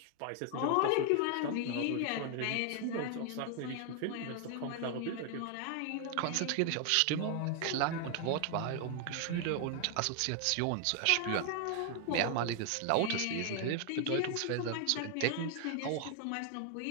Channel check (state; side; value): different; both; correlation 0.00